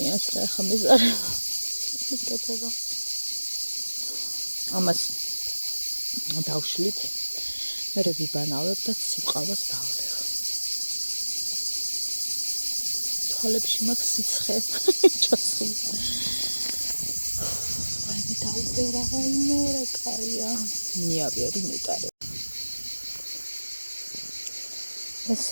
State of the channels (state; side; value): inverted; both; correlation -1.00